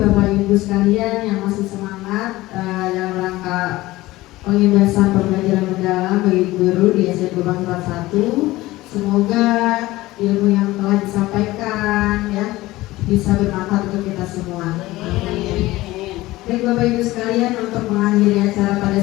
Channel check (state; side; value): quieter; right; 18.3 dB